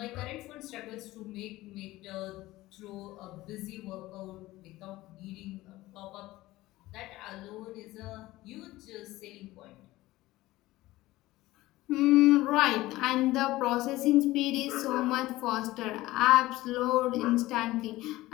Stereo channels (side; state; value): right; quieter; 17.8 dB